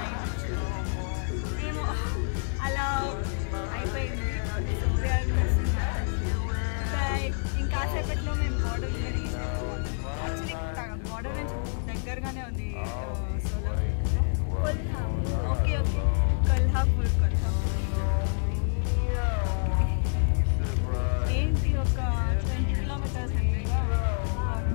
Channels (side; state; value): right; silent; digital silence